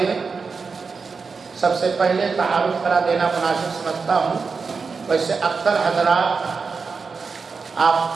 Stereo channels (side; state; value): left; quieter; 4.9 dB